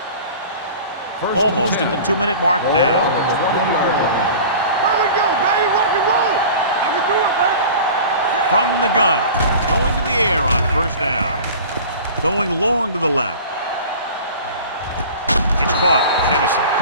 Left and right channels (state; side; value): inverted; both; correlation -0.39